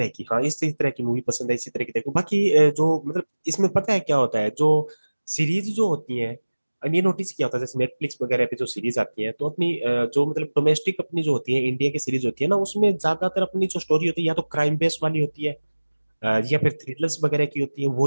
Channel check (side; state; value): both; inverted; correlation -1.00